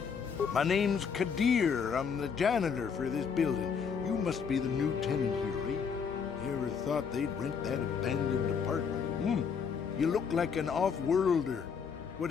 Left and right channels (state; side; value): quieter; right; 6.4 dB